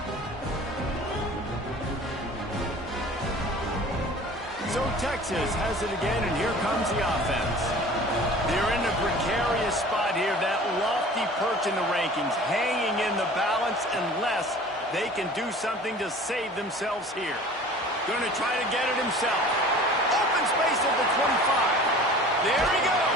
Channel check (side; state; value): both; normal; correlation 0.44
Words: So Texas has it again, and here comes the offense. They're in a precarious spot here, that lofty perch in the rankings, hanging in the balance unless they can do something to save themselves here. Going to try to get it himself. Open space at the 25. There he goes.